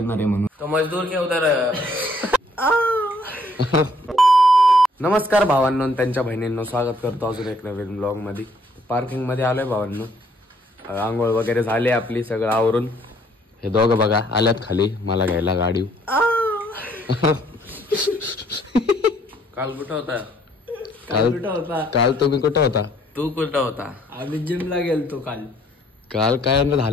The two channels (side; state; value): both; normal; correlation 0.64